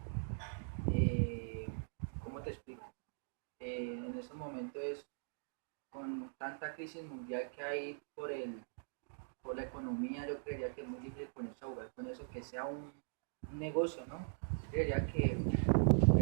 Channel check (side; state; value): left; silent; digital silence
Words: ¿cómo te explico? En estos momentos con tanta crisis mundial que hay por la economía, yo creería que es muy difícil ponerse a jugar con eso, que sea un negocio, ¿no? Yo creería que